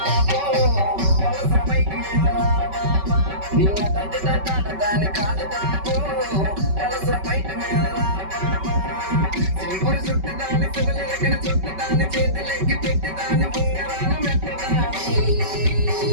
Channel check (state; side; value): late; left; 5.2 ms